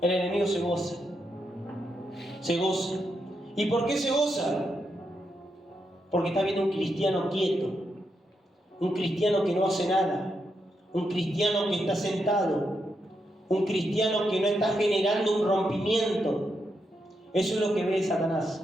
el enemigo se goza. ¿Y por qué se goza? Porque está viendo un cristiano quieto, un cristiano que no hace nada, un cristiano que está sentado, un cristiano que no está generando un rompimiento. Eso es lo que ve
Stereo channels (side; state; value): both; normal; correlation 0.83